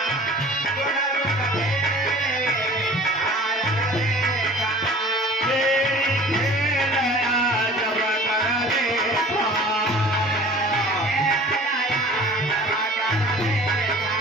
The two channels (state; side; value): normal; both; correlation 0.45